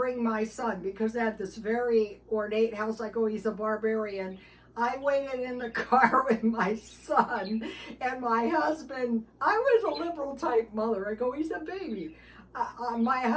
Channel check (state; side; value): identical; both; correlation 1.00